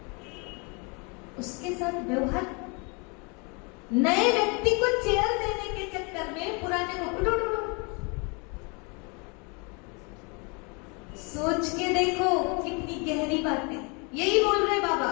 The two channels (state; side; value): quieter; right; 32.1 dB